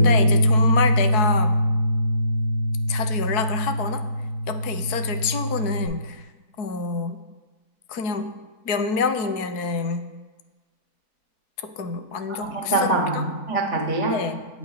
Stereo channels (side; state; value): right; late; 4.6 ms